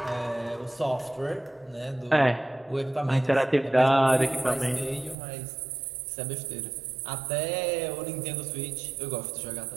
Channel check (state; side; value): drops out; left; at 5.2 s